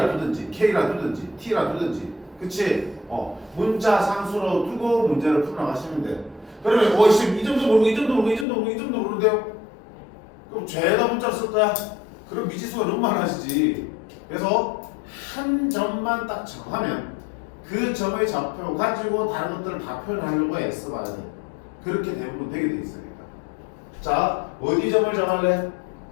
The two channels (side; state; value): right; drops out; at 8.5 s